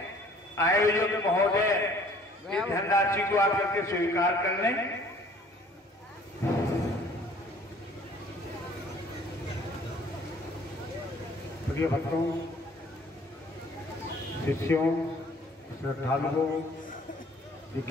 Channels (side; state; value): both; normal; correlation 0.55